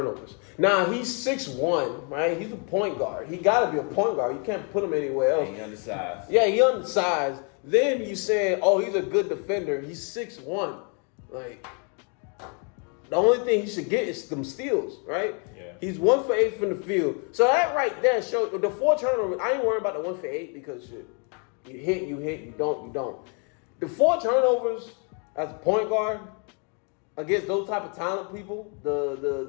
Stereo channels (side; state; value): right; quieter; 38.0 dB